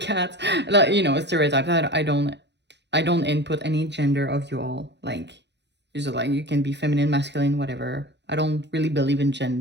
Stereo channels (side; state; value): left; late; 0.50 ms